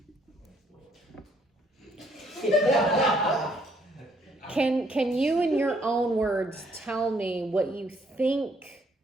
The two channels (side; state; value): both; normal; correlation 0.67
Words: Can you, in your own words, tell me what you think